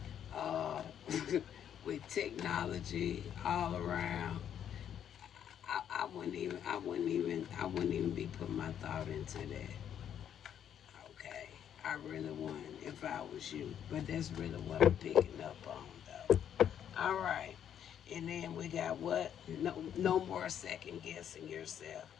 uh, with technology all around, I wouldn't even be putting my thought into that. Okay, I really wouldn't if I was you, but that's really what I'm picking up on, though. All right, and then we got what? No, no more second guessing yourself.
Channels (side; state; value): right; quieter; 9.4 dB